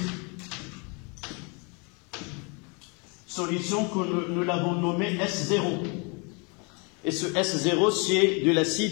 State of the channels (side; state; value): right; quieter; 32.7 dB